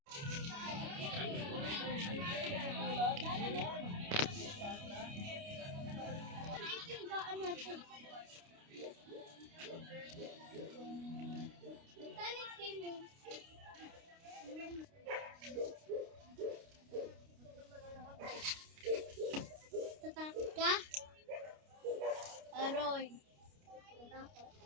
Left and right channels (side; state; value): left; late; 29 ms